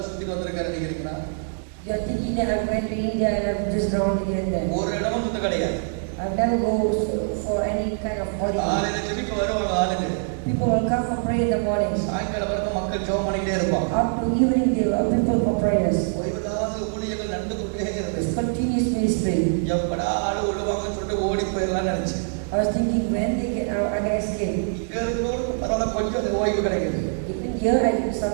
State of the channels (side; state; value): left; silent; digital silence